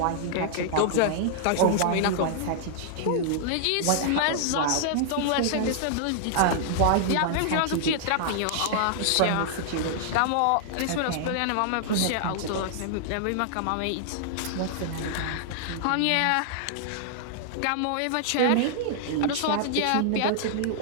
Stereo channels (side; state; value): both; different; correlation -0.01